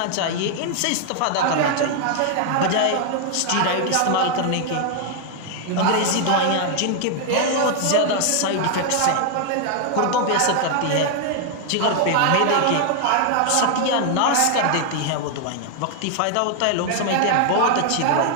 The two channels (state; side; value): different; both; correlation 0.00